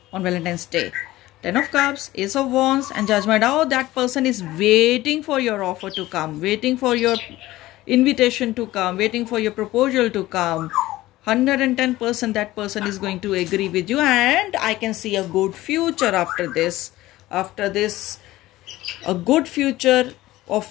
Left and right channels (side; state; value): right; quieter; 16.9 dB